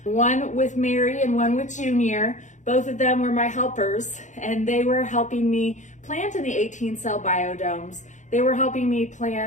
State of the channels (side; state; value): right; late; 0.35 ms